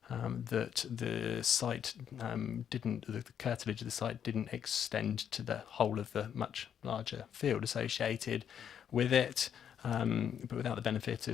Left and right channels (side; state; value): right; quieter; 8.7 dB